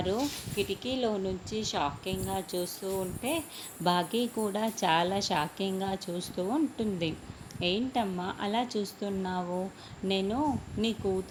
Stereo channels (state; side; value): identical; both; correlation 1.00